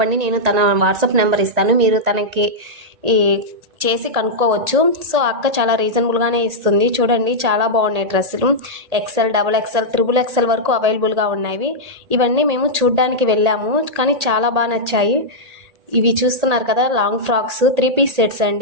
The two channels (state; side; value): late; left; 1.8 ms